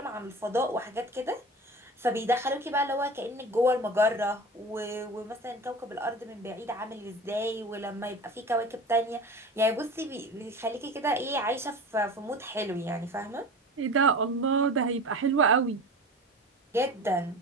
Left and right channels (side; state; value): both; normal; correlation 0.35